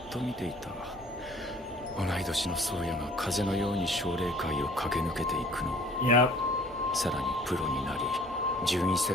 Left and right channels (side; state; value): both; normal; correlation 0.52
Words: と見ていた。同い年の宗谷が風のように奨励会を駆け抜けていくの。 Yep. さらにプロになり順位